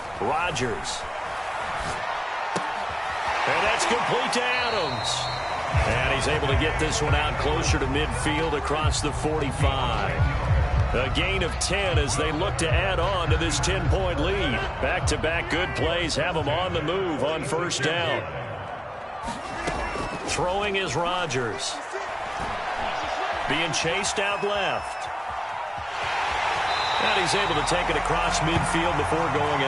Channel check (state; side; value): identical; both; correlation 1.00